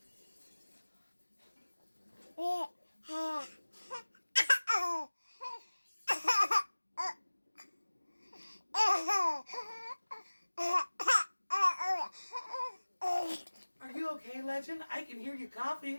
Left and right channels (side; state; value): both; inverted; correlation -1.00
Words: Are you okay, Legend? I can hear you